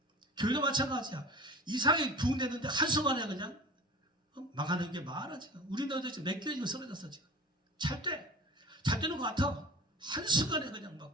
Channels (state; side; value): normal; both; correlation 0.38